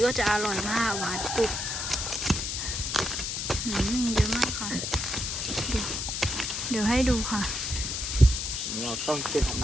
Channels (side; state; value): left; noise; hiss, 2 dB below the sound